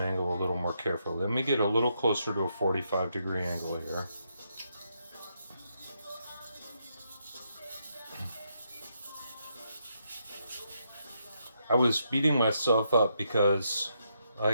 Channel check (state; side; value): inverted; both; correlation -0.79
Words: angle a little more carefully. Let me get a little closer to a 45 degree angle here. I was beating myself up because